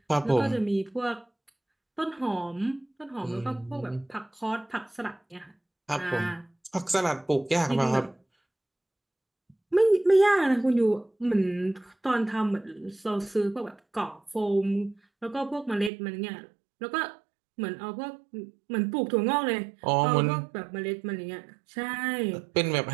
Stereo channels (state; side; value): drops out; left; at 15.9 s